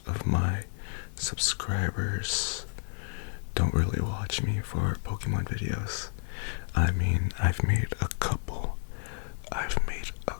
of my subscribers don't really watch me for Pokemon videos. I mean, I've made a couple. I've made a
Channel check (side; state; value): right; silent; digital silence